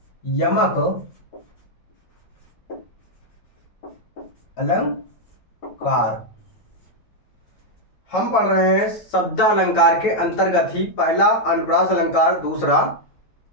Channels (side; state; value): right; late; 9.1 ms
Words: यमक अलंकार। हम पढ़ रहे हैं शब्द अलंकार के अंतर्गत ही पहला अनुप्रास अलंकार, दूसरा